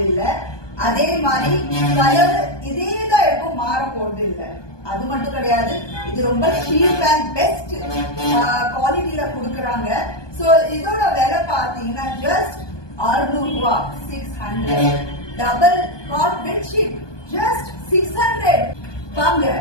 இல்ல. அதே மாதிரி கலர் இதேதான் இருக்கும், மாற போறது இல்ல. அது மட்டும் கிடையாது, இது ரொம்ப சீப் அண்ட் பெஸ்ட் குவாலிட்டியில கொடுக்கறாங்க. சோ இதோட விலை பாத்தீங்கன்னா ஜஸ்ட் 600 ரூபாய், 600. Double God bedsheet just 600. வாங்க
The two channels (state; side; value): late; right; 1.2 ms